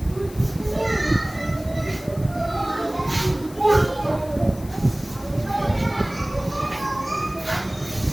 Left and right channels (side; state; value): left; noise; hiss, 20 dB below the sound